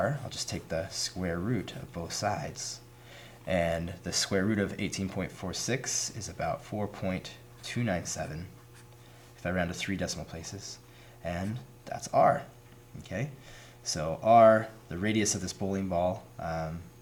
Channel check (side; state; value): both; identical; correlation 1.00